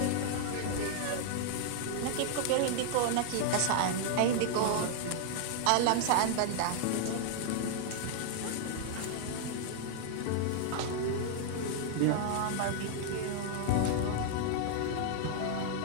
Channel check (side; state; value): both; different; correlation 0.00